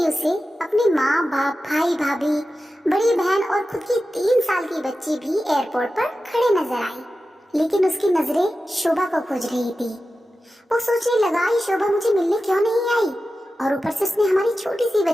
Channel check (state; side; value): normal; both; correlation 0.93